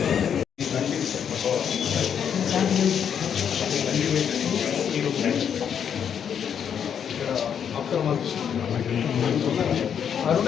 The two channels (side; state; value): right; quieter; 8.1 dB